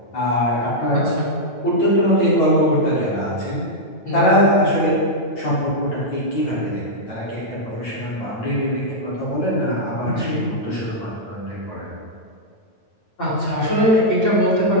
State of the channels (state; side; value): late; right; 9.1 ms